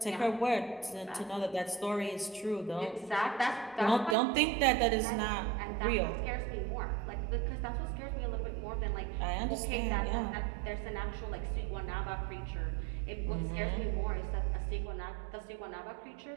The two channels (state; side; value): drops out; left; at 4.2 s